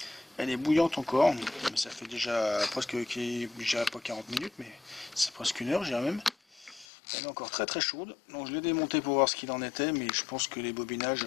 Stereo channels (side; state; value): right; drops out; at 6.9 s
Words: Elle est bouillante encore. Ça fait déjà presque, déjà pas 40 minutes, mais c'est presque une heure, je dirais même. Elle est encore très très chaude. Donc je l'ai démontée pour voir ce qu'il en était, mais je pense que les bobinages,